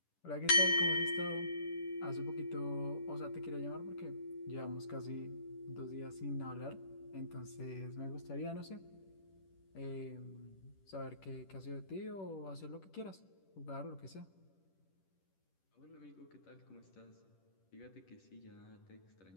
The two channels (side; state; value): right; late; 10 ms